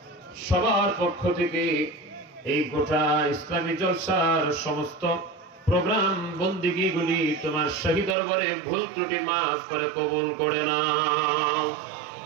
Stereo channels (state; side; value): drops out; left; at 8.2 s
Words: সবার পক্ষ থেকে এই গোটা ইসলামী জলসার সমস্ত প্রোগ্রাম বন্দিগিগুলি তোমার শাহী দরবারে ভুল ত্রুটি মাফ করে কবুল করে নাও।